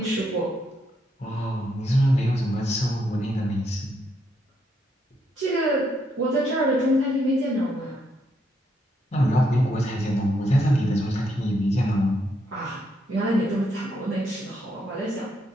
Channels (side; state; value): both; normal; correlation 0.76